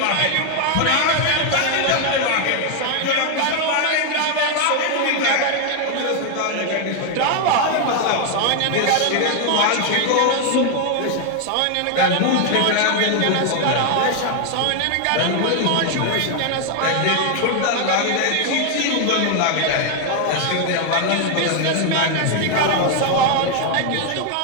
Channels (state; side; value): different; both; correlation 0.01